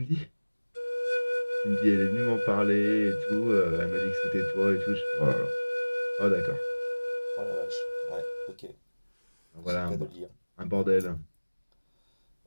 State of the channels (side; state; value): both; inverted; correlation -1.00